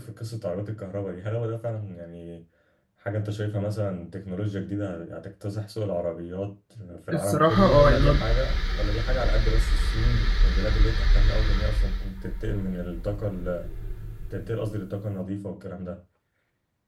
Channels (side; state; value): both; identical; correlation 1.00